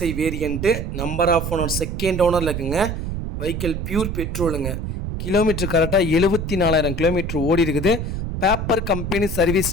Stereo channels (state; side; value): noise; right; rumble, 4 dB below the sound